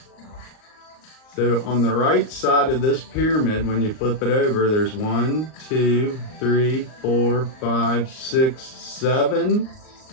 So on the right side of this pyramid, when you flip it over, there's 1, 2, 3, 4, 5, 6, 7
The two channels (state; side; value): late; right; 38 ms